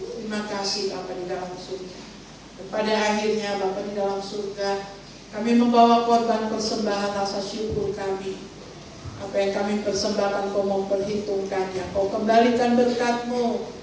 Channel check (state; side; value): identical; both; correlation 1.00